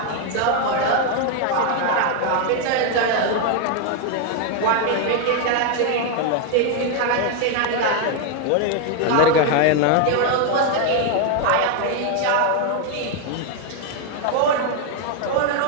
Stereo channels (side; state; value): both; different; correlation 0.01